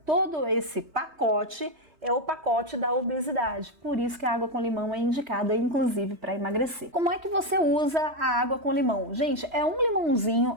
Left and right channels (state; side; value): late; left; 3.1 ms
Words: Todo esse pacote é o pacote da obesidade, por isso que a água com limão é indicada, inclusive, para emagrecer. Como é que você usa a água com limão? Gente, é um